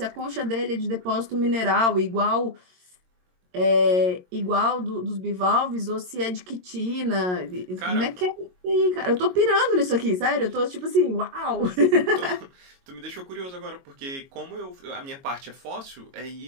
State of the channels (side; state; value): left; late; 22 ms